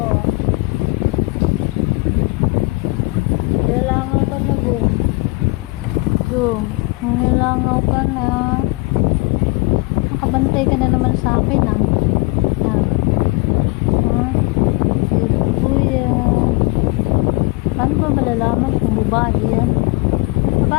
Nilalangaw ka na, Gum. Gum, nilalangaw ka na. Nakabantay ka na naman sa akin, ah. Yan. Ha? Cute kuya. Paano ba malalaman kung babae yan?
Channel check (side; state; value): right; quieter; 25.1 dB